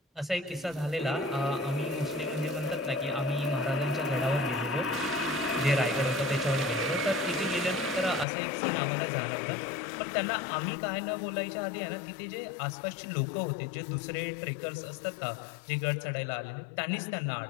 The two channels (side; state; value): right; drops out; at 8.2 s